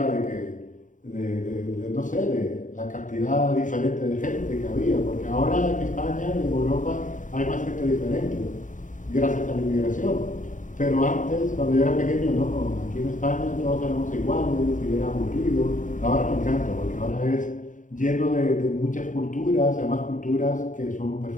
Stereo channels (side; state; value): right; late; 0.37 ms